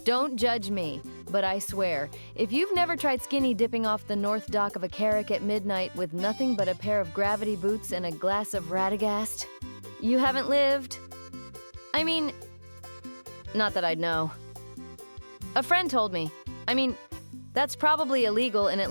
don't judge me, but I swear, if you've never tried skinny dipping off the north dock of a carrack at midnight with nothing but a pair of gravity boots and a glass of Radagast, you haven't lived. I mean, not that I'd know. A friend told me. I mean, that's probably illegal in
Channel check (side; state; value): both; inverted; correlation -1.00